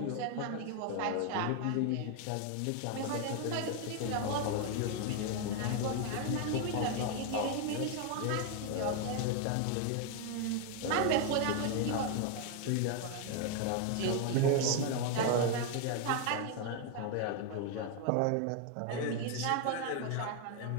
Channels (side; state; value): both; different; correlation 0.01